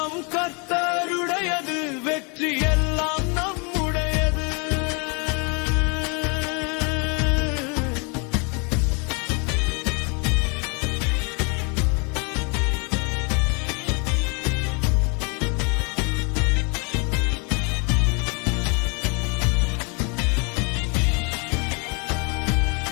கர்த்தருடையது, வெற்றி எல்லாம் நம்முடையது.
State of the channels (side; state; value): right; quieter; 33.7 dB